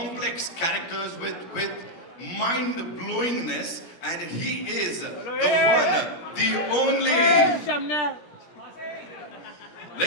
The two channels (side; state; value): right; late; 17 ms